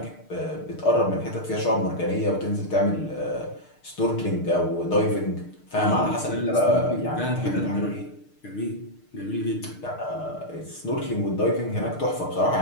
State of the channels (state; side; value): late; right; 6.6 ms